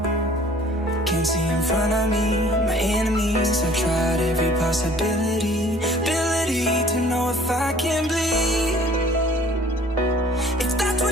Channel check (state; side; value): normal; both; correlation 0.53